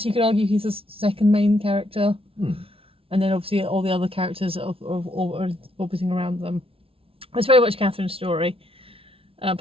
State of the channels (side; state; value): left; late; 0.26 ms